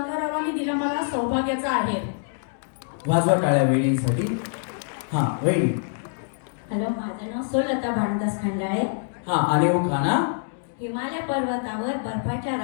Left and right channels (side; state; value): right; silent; digital silence